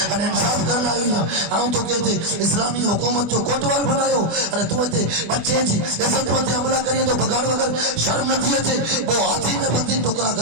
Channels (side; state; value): left; late; 24 ms